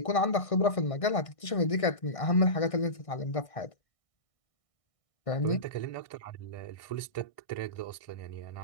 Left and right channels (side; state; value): right; late; 1.6 ms